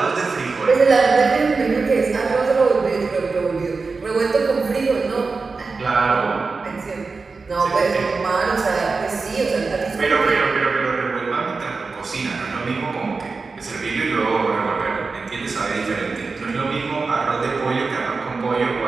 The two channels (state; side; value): quieter; left; 4.3 dB